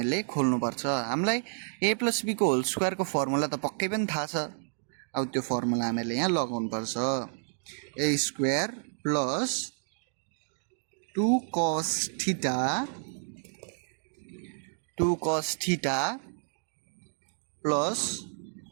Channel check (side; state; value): left; silent; digital silence